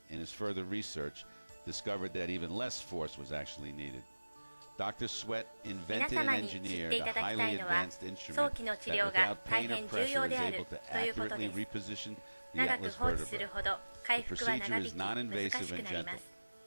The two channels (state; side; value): inverted; both; correlation -1.00